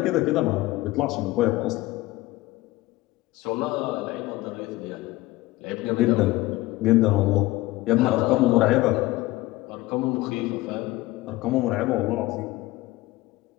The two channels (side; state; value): right; quieter; 18.6 dB